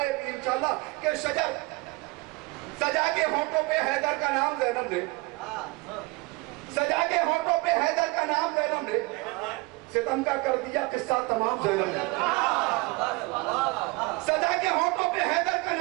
इंशाल्लाह कि सजा के होंठों पे हैदर का नाम ज़ैनब ने, सजा के होंठों पे हैदर का नाम ज़ैनब ने, सितम का कर दिया किस्सा तमाम ज़ैनब ने। सजा के होंठों पे हैदर का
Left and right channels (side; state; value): left; quieter; 25.5 dB